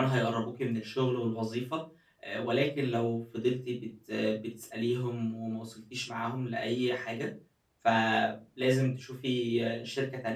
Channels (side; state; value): both; identical; correlation 1.00